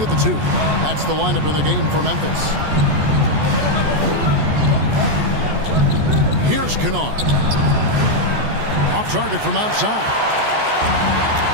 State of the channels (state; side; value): late; left; 14 ms